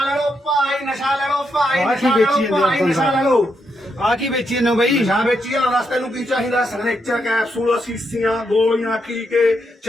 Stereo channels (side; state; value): both; normal; correlation 0.81